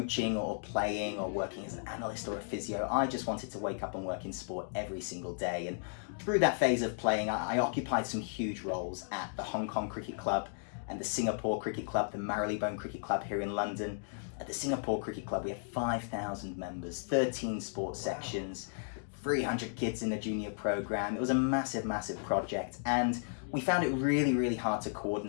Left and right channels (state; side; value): silent; right; digital silence